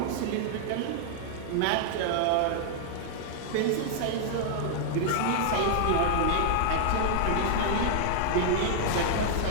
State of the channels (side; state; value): both; different; correlation -0.01